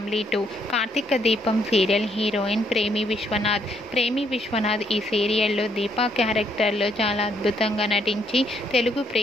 2. Karthika Deepam serial heroine ప్రేమి విశ్వనాథ్ ఈ సీరియల్లో దీపా క్యారెక్టర్లో చాలా అద్భుతంగా నటించి తెలుగు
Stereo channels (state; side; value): normal; both; correlation 0.71